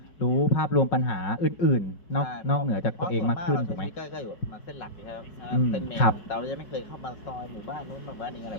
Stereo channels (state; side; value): late; right; 5.4 ms